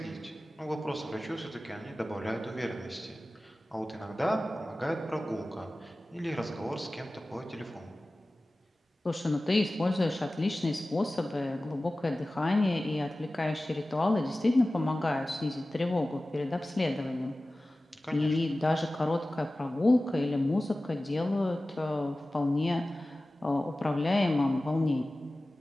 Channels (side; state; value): both; normal; correlation 0.96